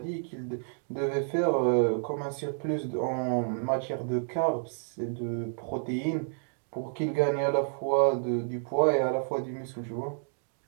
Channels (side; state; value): left; silent; digital silence